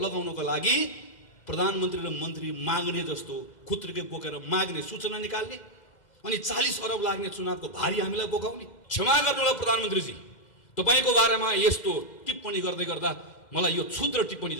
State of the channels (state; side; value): late; right; 2.1 ms